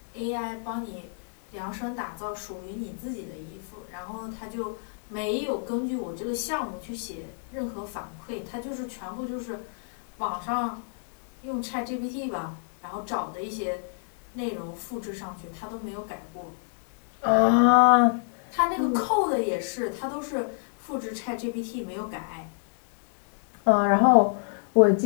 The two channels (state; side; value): silent; right; digital silence